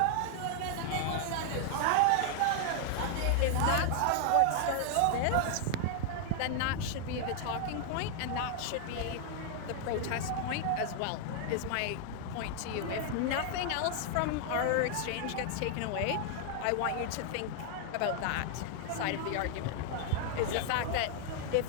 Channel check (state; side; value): different; both; correlation 0.00